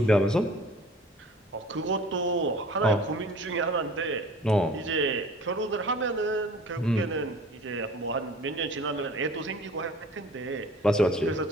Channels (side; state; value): both; normal; correlation 0.46